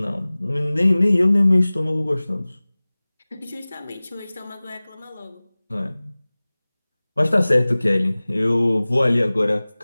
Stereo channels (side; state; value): both; inverted; correlation -0.99